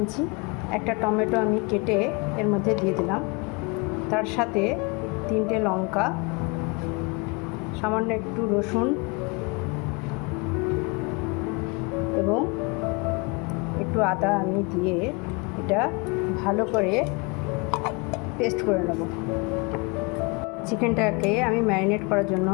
একটা টমেটো আমি কেটে এর মধ্যে দিয়ে দিলাম। তার সাথে 3টে লঙ্কা, সামান্য একটু রসুন এবং একটু আদা আমি দিয়ে এটা ভালো করে পেস্ট করে নেব। চিকেনটাকে আমি ম্যারিনেট করার জন্য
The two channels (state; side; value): quieter; right; 29.6 dB